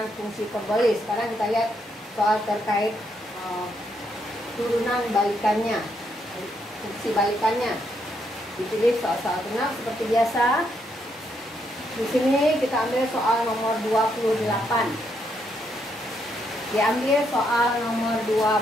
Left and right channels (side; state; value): both; normal; correlation 0.76